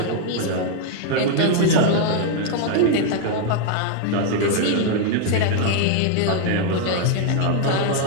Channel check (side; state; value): both; different; correlation 0.00